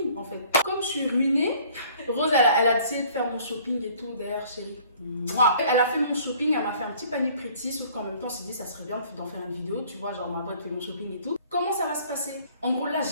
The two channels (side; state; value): both; inverted; correlation -0.54